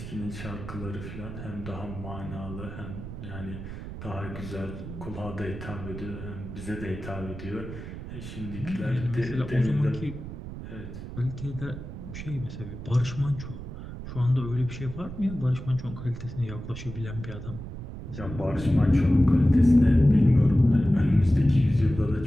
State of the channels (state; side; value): noise; right; rumble, 10 dB below the sound